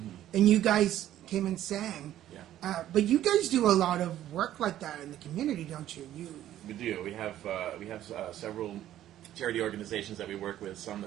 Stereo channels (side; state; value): left; quieter; 12.5 dB